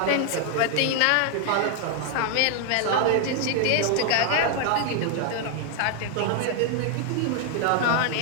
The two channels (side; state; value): both; different; correlation 0.00